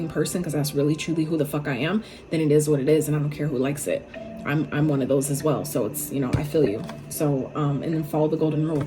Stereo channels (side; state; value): both; identical; correlation 1.00